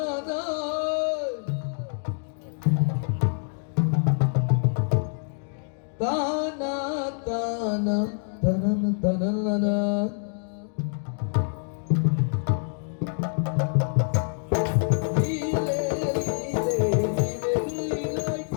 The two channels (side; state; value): right; silent; digital silence